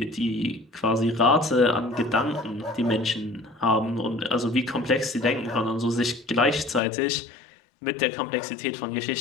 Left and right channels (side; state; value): right; drops out; at 6.8 s